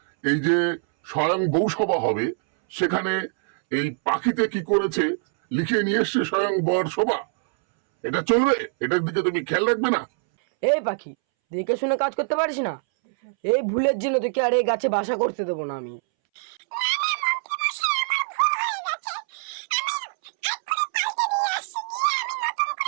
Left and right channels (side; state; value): left; silent; 63 dB below the other